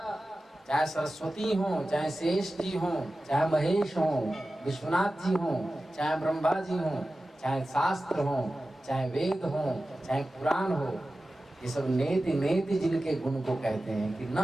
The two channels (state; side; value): normal; both; correlation 0.95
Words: चाहे सरस्वती हो, चाहे शेष जी हो, चाहे महेश हो, विश्वनाथ जी हो, चाहे ब्रह्मा जी हो, चाहे शास्त्र हो, चाहे वेद हो, चाहे पुराण हो, ये सब नेति नेति जिनके गुण को कहते हैं कि